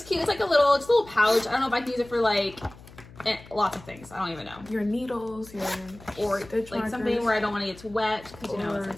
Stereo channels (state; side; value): noise; left; hum, 20 dB below the sound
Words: cute. It's like a little pouch. I don't know if I can use it for like lots of things. I don't even know. Your needles, your or stitch like markers, something where I don't want to get too wet because you know it's